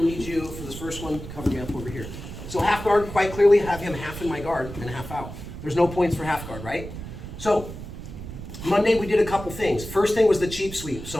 need you for this first one, cover me up over here. So half guard, quite clearly, have him half in my guard and half out. There's no points for half guard, right? So Monday we did a couple things. First thing was the cheap sweep.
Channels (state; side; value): noise; right; rumble, 11 dB below the sound